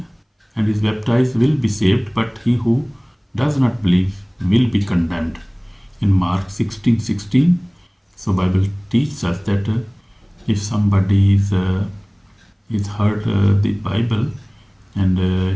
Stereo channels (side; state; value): both; identical; correlation 1.00